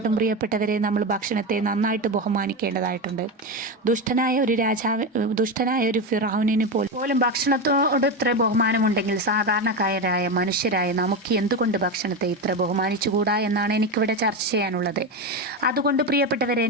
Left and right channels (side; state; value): both; normal; correlation 0.15